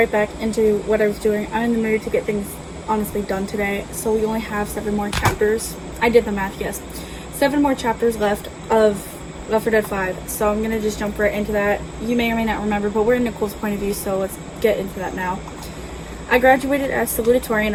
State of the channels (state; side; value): identical; both; correlation 1.00